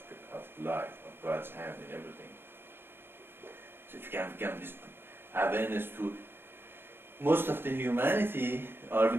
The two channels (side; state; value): left; late; 0.10 ms